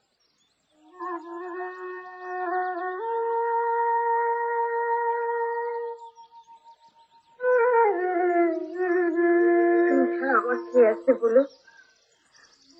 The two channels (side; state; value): both; identical; correlation 1.00